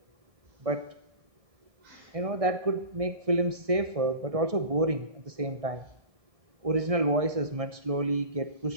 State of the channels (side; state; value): left; late; 1.6 ms